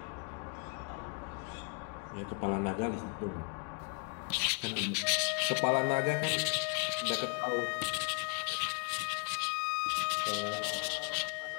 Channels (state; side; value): quieter; right; 36.3 dB